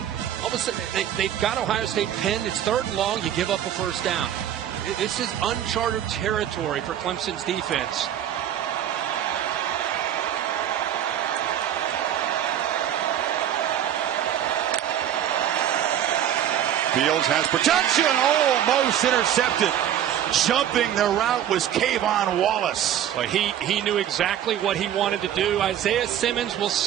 All of a sudden, they've got Ohio State pinned. It's 3rd and long. You give up a first down. This is uncharted territory for Clemson's defense. Fields has protection, almost intercepted. Jumping the route was Kayvon Wallace. Well, he knew exactly what he wanted to do. Isaiah Simmons will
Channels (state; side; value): quieter; left; 10.5 dB